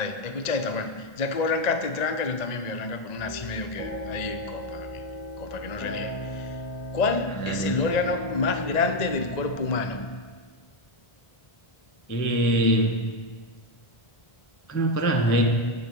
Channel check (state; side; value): late; right; 1.9 ms